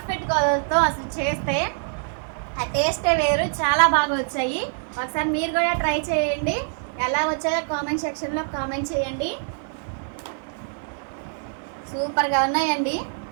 కొలతలతో అసలు చేస్తే ఆ టేస్టే వేరు. చాలా బాగా వచ్చాయి. ఒకసారి మీరు కూడా ట్రై చేయండి. ఎలా వచ్చాయో కామెంట్ సెక్షన్లో కామెంట్ చేయండి. సూపర్గా ఉన్నాయండి.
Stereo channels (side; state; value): left; silent; 62 dB below the other